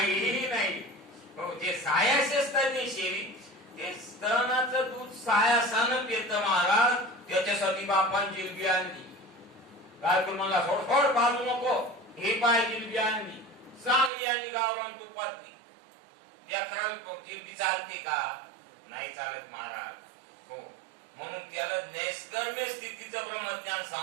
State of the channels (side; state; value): left; drops out; at 14.1 s